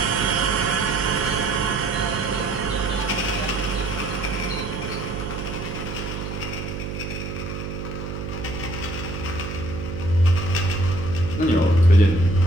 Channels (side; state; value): right; noise; hum, 6 dB below the sound